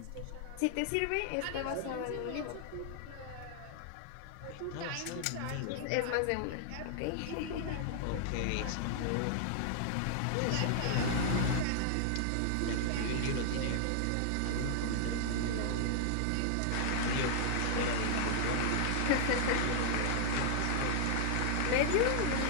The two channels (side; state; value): both; different; correlation 0.00